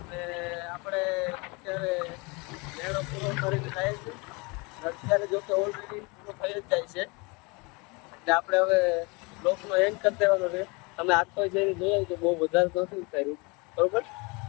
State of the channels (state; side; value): quieter; right; 28.2 dB